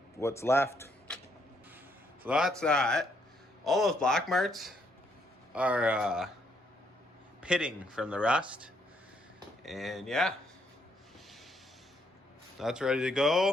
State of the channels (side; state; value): both; normal; correlation 0.72